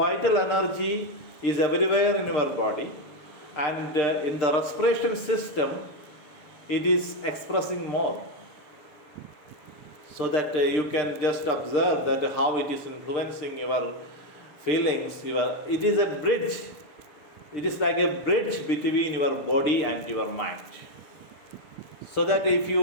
energy is everywhere in your body, and in the respiration system, it is expressing more. So that you can just observe that how it is influencing your feelings. It is a bridge. It is like a bridge between your body and your mind. So that if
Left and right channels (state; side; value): late; right; 6.7 ms